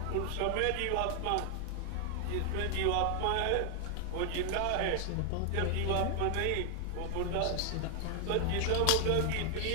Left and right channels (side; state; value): both; different; correlation 0.00